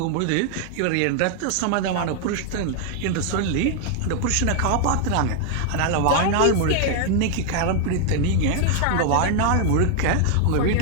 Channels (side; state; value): both; different; correlation 0.00